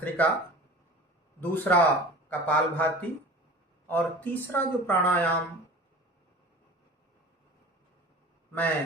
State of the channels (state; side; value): normal; both; correlation 0.39